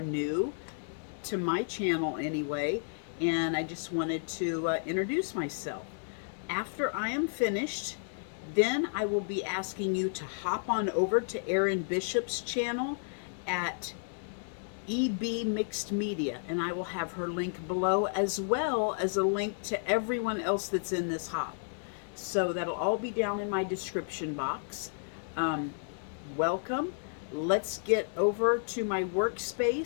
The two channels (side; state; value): right; silent; digital silence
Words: new to my channel anyway, and I just wanted to introduce myself. After I am finished, then I will be asking you to hop on over to Erin Bishop's channel at EB Mixed Media, and I will have her link below as well as a link to everyone else that's in this hop. So that'll all be down in my description box. Welcome. Let's get over to my